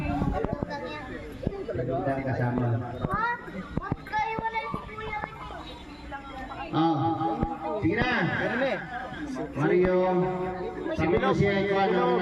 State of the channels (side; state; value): both; identical; correlation 1.00